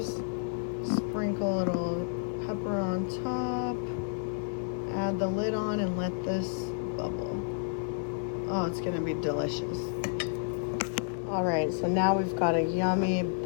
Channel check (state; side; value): silent; right; digital silence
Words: sprinkle a little pepper on top, add the lid on and let this bubble. Oh, it's gonna be delicious. All right, so now we've got a yummy